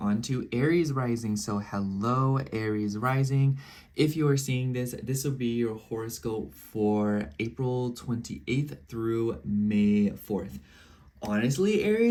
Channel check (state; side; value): identical; both; correlation 1.00